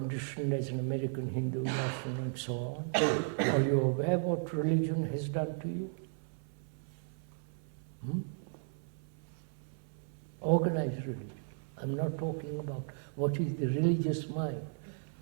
as an American Hindu national and so on? Are you aware what religion has done to you? Organized religion. I'm not talking about what is the religious mind.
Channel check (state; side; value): silent; left; 54 dB below the other